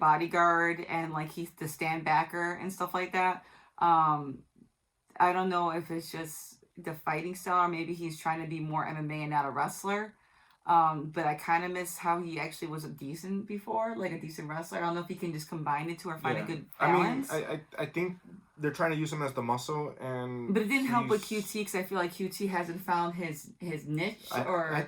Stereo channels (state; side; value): identical; both; correlation 1.00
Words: and, like, he's the stand backer and stuff like that. I don't know if it's just the fighting style, or maybe he's trying to be more MMA and not a wrestler. But I kind of miss how he actually was a decent wrestler. I don't know if he can just combine the two or find a good balance. I mean, I think they're trying to use him as the muscle, but it didn't help with QT, because I feel like QT hasn't found his niche. I